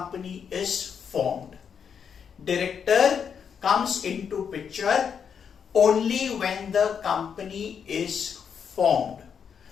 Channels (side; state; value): right; quieter; 7.1 dB